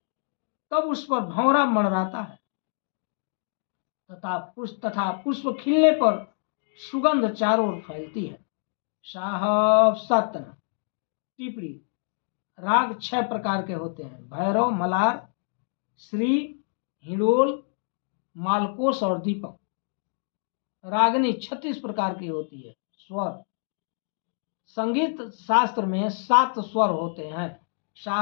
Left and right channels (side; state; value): right; silent; digital silence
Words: तब उस पर भंवरा मंडराता है तथा पुष्प खिलने पर सुगंध चारों ओर फैलती है। साहब सतन। टिप्पणी: राग 6 प्रकार के होते हैं: भैरव, मलार, श्री, हिडोल, मालकोस और दीपक। रागनी 36 प्रकार की होती है। स्वर: संगीत शास्त्र में 7 स्वर होते हैं।